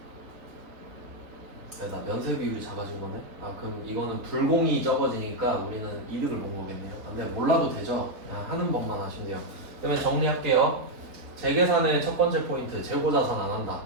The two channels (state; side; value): late; left; 3.5 ms